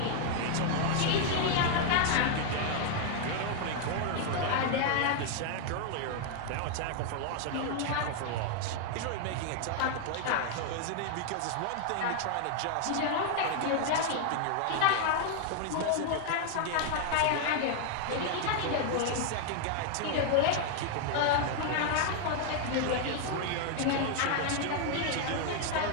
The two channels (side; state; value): both; different; correlation 0.00